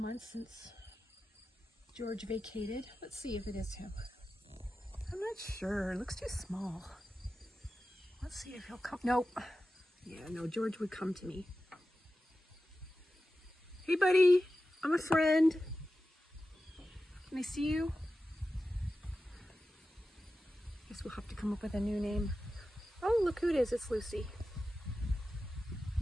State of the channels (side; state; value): both; normal; correlation 0.93